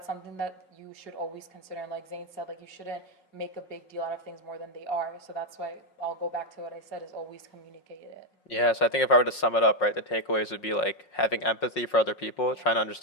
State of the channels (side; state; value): right; late; 5.5 ms